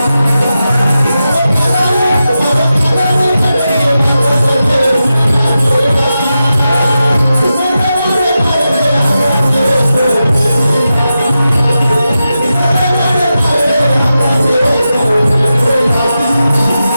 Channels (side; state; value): both; inverted; correlation -0.91